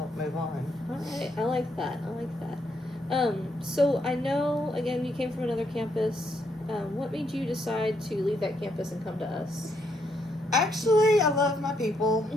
move on. All right. I like that. So I know, again, you came from another campus. What made you decide to leave that campus and come to us? Actually, I love my people.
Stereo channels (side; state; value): both; normal; correlation 0.75